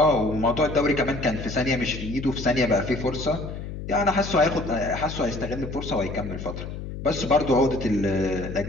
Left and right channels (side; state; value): left; noise; hum, 8 dB below the sound